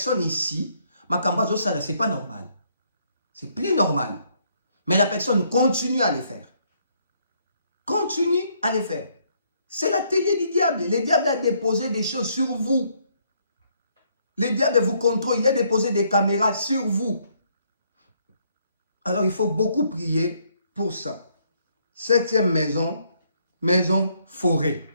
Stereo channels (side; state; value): both; inverted; correlation -0.70